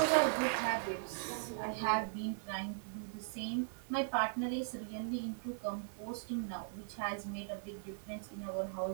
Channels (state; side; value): silent; left; digital silence